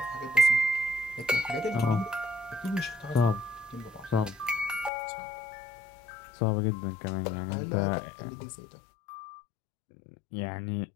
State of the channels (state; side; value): drops out; right; at 4.9 s